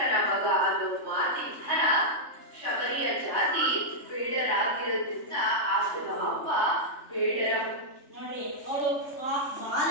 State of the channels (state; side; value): late; right; 3.4 ms